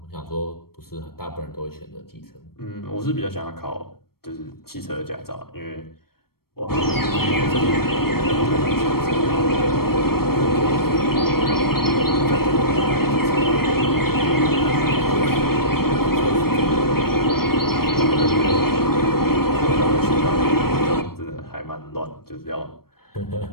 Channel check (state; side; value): late; right; 0.94 ms